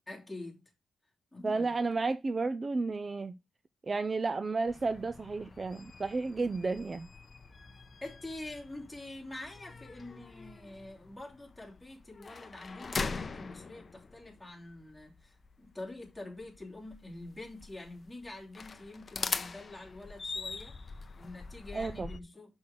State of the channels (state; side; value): normal; both; correlation 0.92